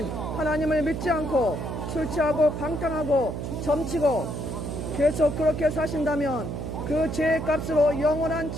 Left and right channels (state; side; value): noise; right; hum, 5 dB below the sound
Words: 하나님을 믿지 않고 술 취하고 방탕하고 점치고 계속 그렇게 사신다면 그 죄의 값으로 영원한